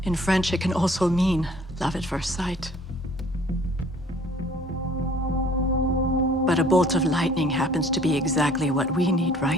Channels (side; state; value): both; normal; correlation 0.54